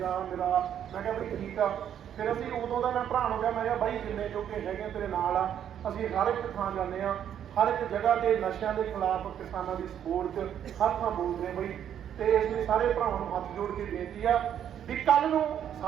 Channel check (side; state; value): left; quieter; 9.6 dB